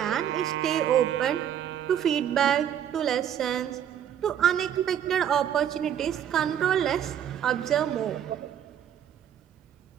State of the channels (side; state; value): left; quieter; 9.6 dB